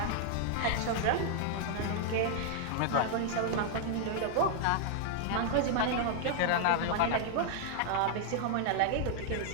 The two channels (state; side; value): different; both; correlation 0.00